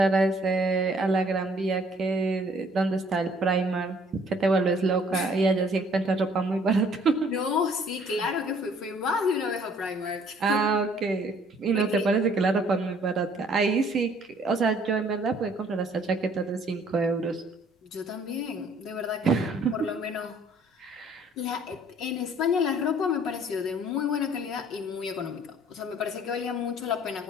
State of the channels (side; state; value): both; normal; correlation 0.59